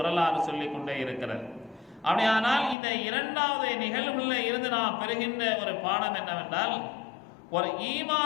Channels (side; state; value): right; drops out; at 2.8 s